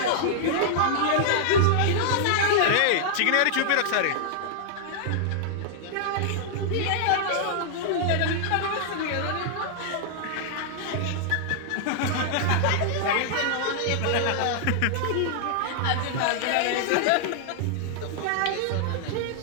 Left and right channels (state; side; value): different; both; correlation -0.01